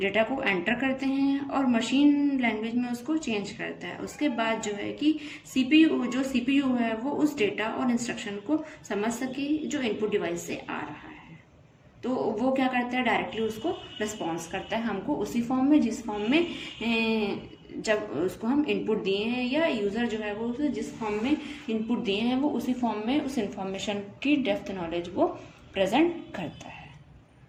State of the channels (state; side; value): identical; both; correlation 1.00